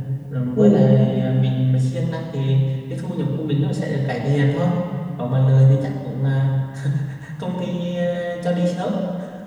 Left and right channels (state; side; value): identical; both; correlation 1.00